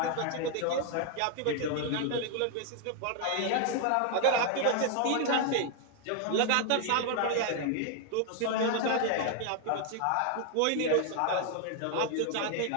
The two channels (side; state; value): both; different; correlation 0.00